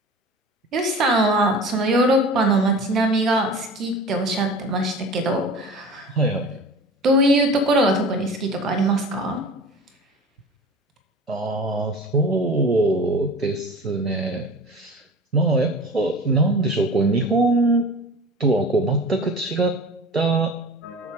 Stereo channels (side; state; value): both; normal; correlation 0.38